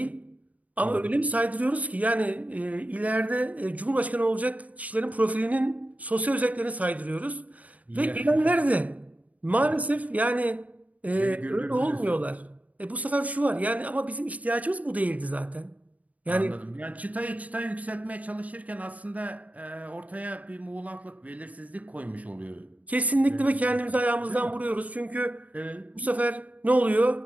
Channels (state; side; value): late; left; 0.071 ms